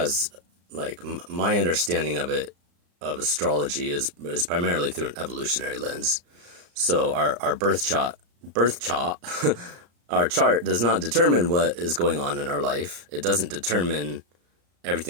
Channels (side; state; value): left; late; 34 ms